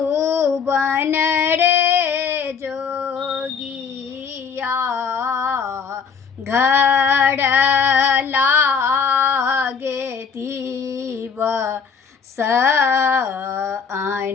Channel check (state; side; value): quieter; right; 6.3 dB